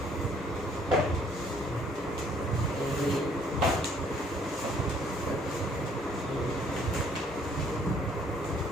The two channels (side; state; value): both; normal; correlation 0.62